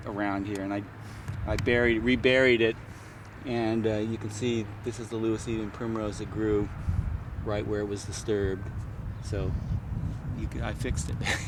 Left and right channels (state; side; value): identical; both; correlation 1.00